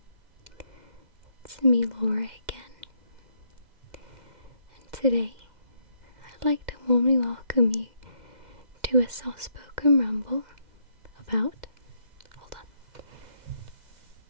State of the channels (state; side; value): late; left; 2.1 ms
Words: it's me Laura again, and today I'd like to warmly welcome you to a soft-spoken ramble about,